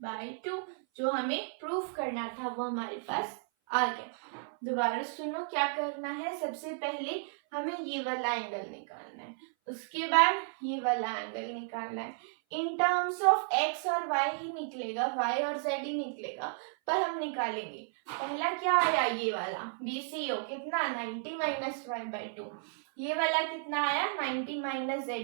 जो हमें प्रूफ करना था वो हमारे पास आ गया। दोबारा सुनो क्या करना है, सबसे पहले हमें ये वाला एंगल निकालना है, उसके बाद ये वाला एंगल निकालना है। इन टर्म्स ऑफ x और y ही निकलेगा, y और z ही निकलेगा, पर हम निकालेंगे। पहला क्या आया, ये वाला BCO कितना, 90 माइनस y/2। ये वाला कितना आया, 90 माइनस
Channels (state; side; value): silent; left; 56 dB below the other